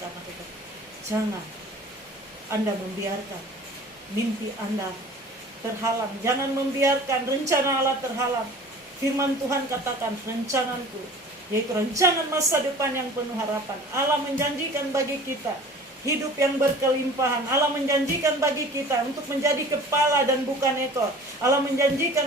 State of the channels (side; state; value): both; normal; correlation 0.44